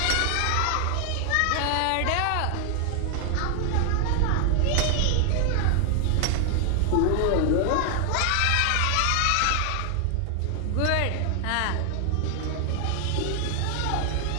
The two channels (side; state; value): both; different; correlation 0.00